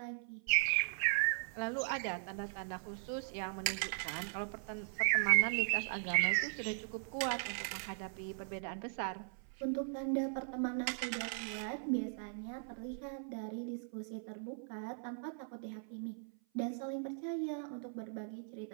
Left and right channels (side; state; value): left; silent; 52 dB below the other